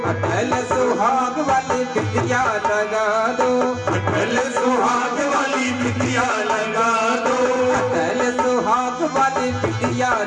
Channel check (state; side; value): identical; both; correlation 1.00